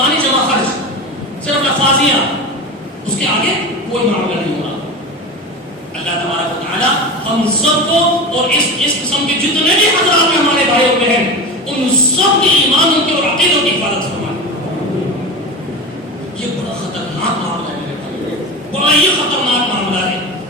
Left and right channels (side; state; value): both; normal; correlation 0.26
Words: جمع خرچ، صرف لفاظیاں، اس کے آگے کوئی معاملہ نہیں ہو رہا. اللہ تبارک و تعالی ہم سب کو اور اس قسم کے جتنے بھی حضرات ہیں ہمارے بھائی اور بہن، ان سب کے ایمانوں کی اور عقیدوں کی حفاظت فرمائے. یہ بڑا خطرناک معاملہ ہے، بڑا یہ خطرناک معاملہ ہے.